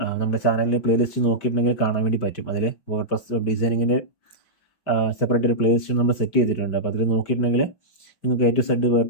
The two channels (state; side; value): late; right; 5.1 ms